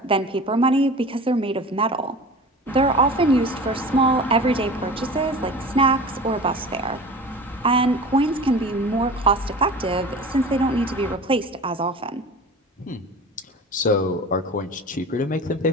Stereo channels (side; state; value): both; normal; correlation 0.36